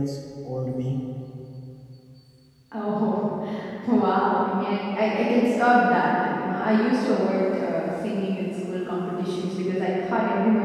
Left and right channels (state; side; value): identical; both; correlation 1.00